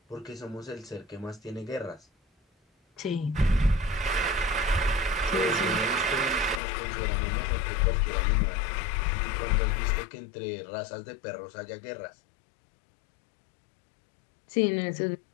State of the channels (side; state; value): right; drops out; at 6.6 s